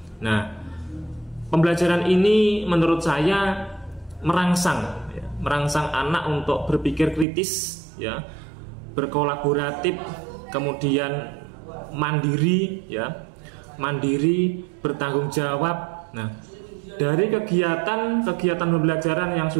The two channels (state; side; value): drops out; left; at 7.2 s